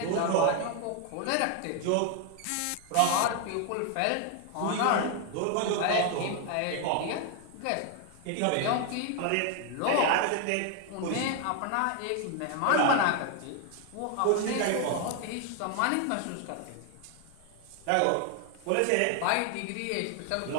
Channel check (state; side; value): different; both; correlation 0.01